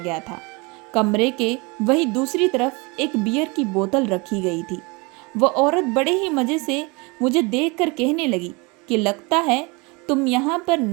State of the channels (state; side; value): quieter; left; 27.7 dB